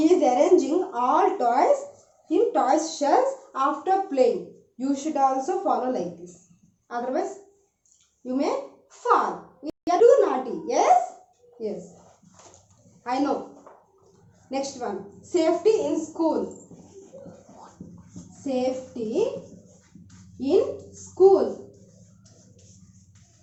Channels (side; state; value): both; identical; correlation 1.00